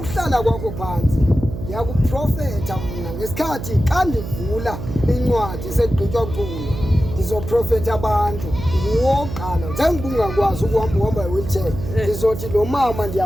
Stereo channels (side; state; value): right; noise; hum, 8 dB below the sound